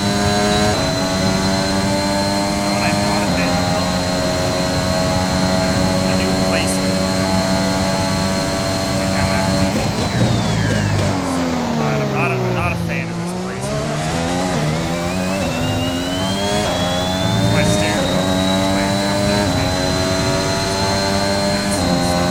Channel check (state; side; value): identical; both; correlation 1.00